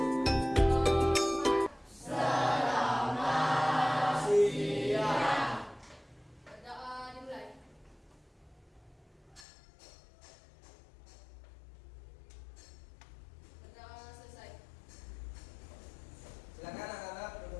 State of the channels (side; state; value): right; drops out; at 9.5 s